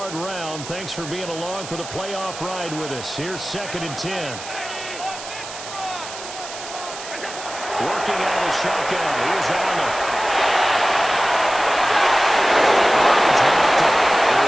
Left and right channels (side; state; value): right; noise; hiss, 12 dB below the sound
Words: round. Thanks for being along for the playoff ride with us. Here's 2nd and 10. Working out of the shotgun. Here's Allen.